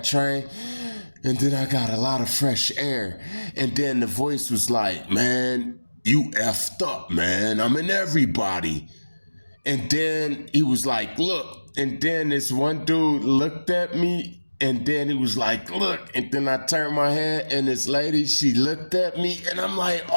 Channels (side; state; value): both; inverted; correlation -1.00